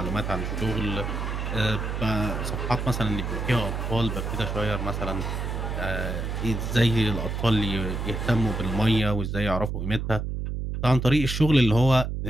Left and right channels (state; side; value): noise; right; hum, 3 dB below the sound